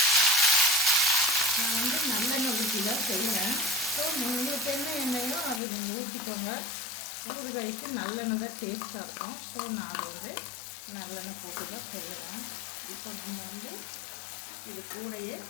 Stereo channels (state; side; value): drops out; right; at 5.6 s